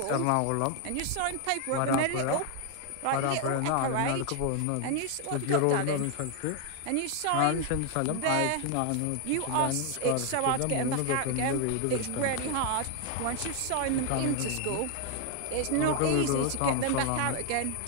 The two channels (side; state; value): both; different; correlation 0.00